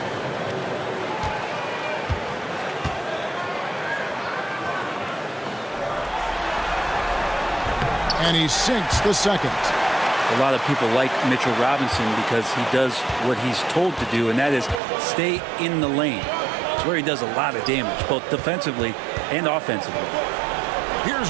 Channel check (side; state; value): left; drops out; at 14.8 s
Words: And he sinks the 2nd. A lot of people like Mitchell Robinson because he does what he's told to do, and that is stay in the lane. It's where he does a lot of damage, both defensively and offensively.